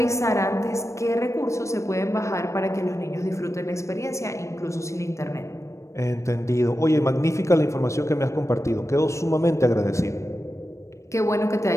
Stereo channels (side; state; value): right; late; 0.15 ms